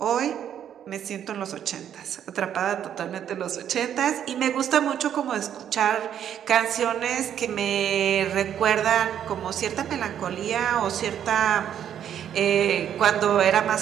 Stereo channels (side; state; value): left; quieter; 9.6 dB